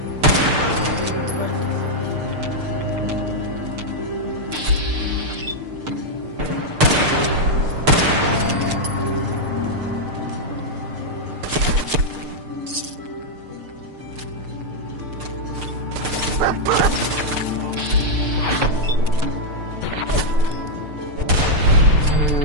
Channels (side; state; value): left; late; 6.6 ms